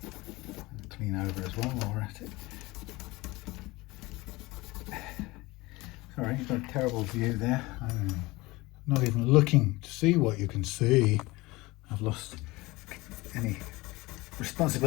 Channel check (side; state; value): right; quieter; 21.6 dB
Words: Clean over as well while we're at it. Sorry, you've got a terrible view there. I'm not even looking to see what you can see. I've lost any